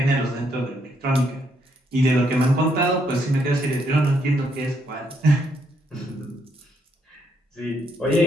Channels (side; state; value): both; normal; correlation 0.74